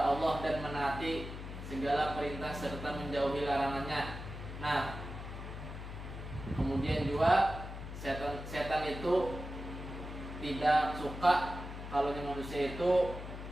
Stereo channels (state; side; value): noise; left; hum, 9 dB below the sound